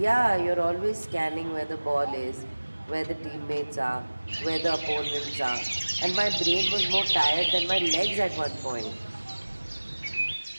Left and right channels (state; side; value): inverted; both; correlation -1.00